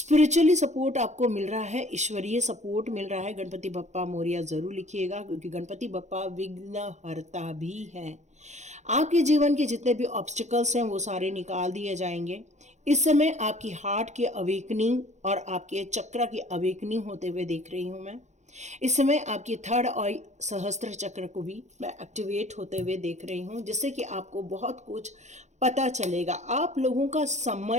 सपोर्ट आपको मिल रहा है, ईश्वरीय सपोर्ट मिल रहा है। गणपति बप्पा मोरिया ज़रूर लिखिएगा, क्योंकि गणपति बप्पा विघ्नहर्ता भी हैं। आपके जीवन के जितने भी ऑब्स्टिकल्स हैं वो सारे निकाल दिए जाएंगे। इस समय आपकी हार्ट की अवेकनिंग और आपके चक्र की अवेकनिंग होते हुए देख रही हूँ मैं। इस समय आपकी थर्ड और सहस्त्र चक्र को भी मैं एक्टिवेट होते हुए देख रही हूँ, जिससे कि आपको बहुत कुछ पता चलेगा। आप लोगों का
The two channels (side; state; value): left; late; 0.34 ms